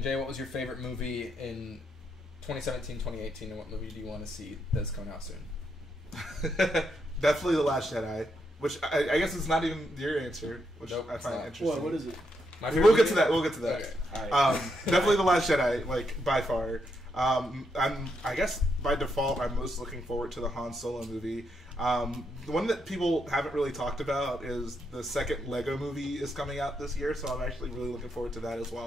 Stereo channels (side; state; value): both; normal; correlation 0.80